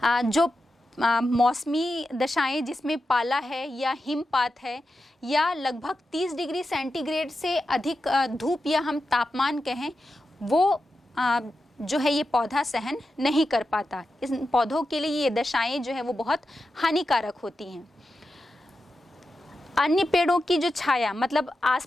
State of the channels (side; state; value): both; normal; correlation 0.90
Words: जो मौसमी दशाएं जिसमें पाला है या हिमपात है या लगभग 30 डिग्री सेंटीग्रेड से अधिक धूप या हम तापमान कहें, वो जो है ये पौधा सहन नहीं कर पाता। इस पौधों के लिए ये दशाएं जो है वो बहुत हानिकारक होती हैं। अन्य पेड़ों की जो छाया, मतलब